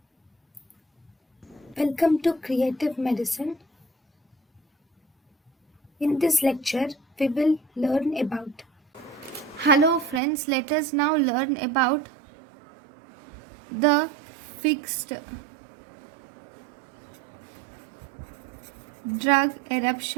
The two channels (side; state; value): left; drops out; at 10.2 s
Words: welcome to Creative Medicine. In this lecture, we will learn about. Hello friends, let us now learn about the fixed drug